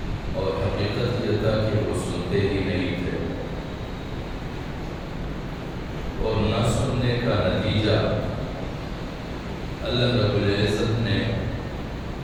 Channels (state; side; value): identical; both; correlation 1.00